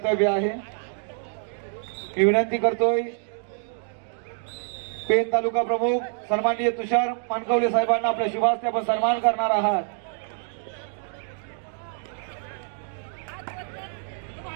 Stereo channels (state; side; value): silent; left; 61 dB below the other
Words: आहे। मी विनंती करतोय पेन तालुका प्रमुख सन्माननीय तुषार मानकवले साहेबांना आपल्या शुभास्ते आपण सन्मान करणार आहात।